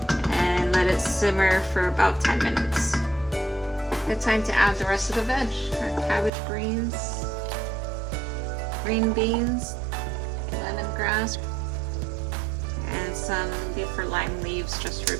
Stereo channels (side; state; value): left; drops out; at 6.3 s